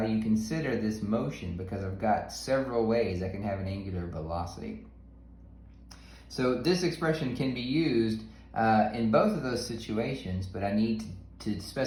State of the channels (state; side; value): identical; both; correlation 1.00